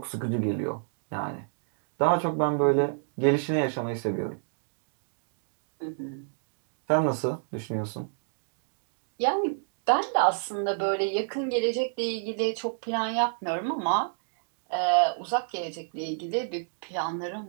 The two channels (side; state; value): left; silent; digital silence